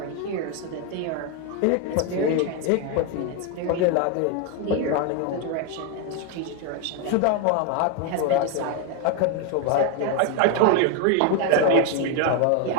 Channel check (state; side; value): different; both; correlation 0.01